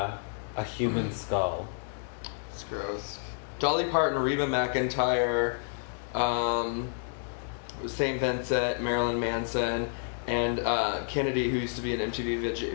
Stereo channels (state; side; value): silent; right; digital silence